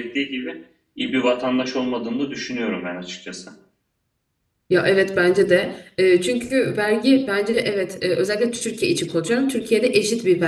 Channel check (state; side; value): identical; both; correlation 1.00